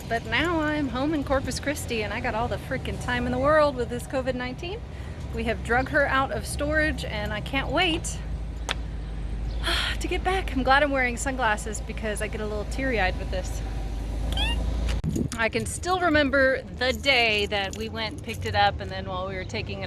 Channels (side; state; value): both; identical; correlation 1.00